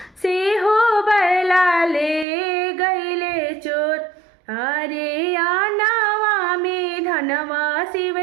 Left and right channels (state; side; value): drops out; left; at 2.2 s